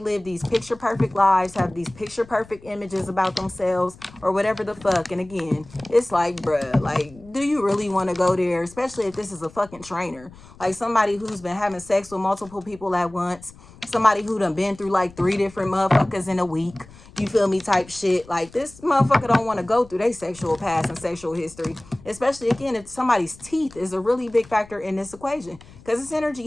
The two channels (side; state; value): left; noise; rumble, 22 dB below the sound